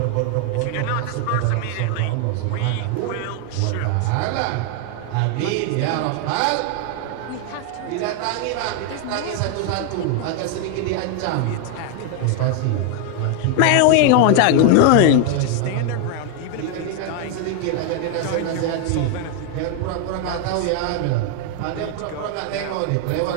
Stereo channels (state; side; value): different; both; correlation 0.00